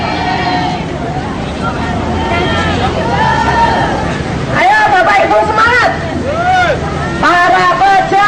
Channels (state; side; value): identical; both; correlation 1.00